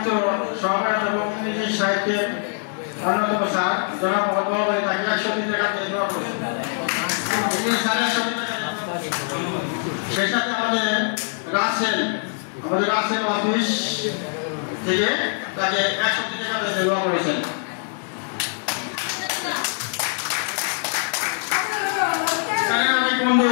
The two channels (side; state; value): right; silent; 63 dB below the other